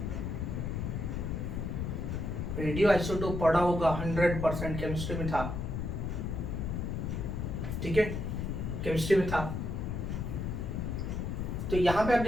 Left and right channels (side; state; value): left; noise; rumble, 2 dB below the sound